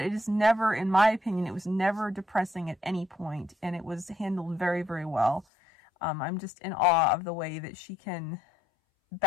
it is never, in my opinion, it was never depressing at any point, and it was handled very, very well. I'm just in awe of the way that she can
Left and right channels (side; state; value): right; drops out; at 5.5 s